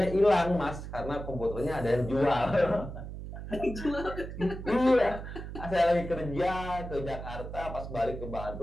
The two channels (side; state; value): right; noise; hum, 9 dB below the sound